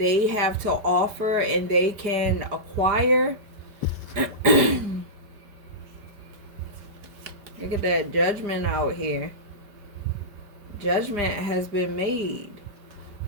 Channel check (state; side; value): late; left; 4.9 ms